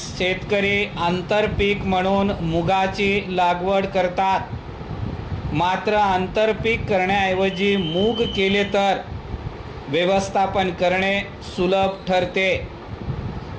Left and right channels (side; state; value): both; identical; correlation 1.00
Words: शेतकरी आंतरपीक म्हणून मुगाची लागवड करतात, मात्र आंतरपीक करण्याऐवजी मूग केले तर व्यवस्थापन करणे सुलभ ठरते।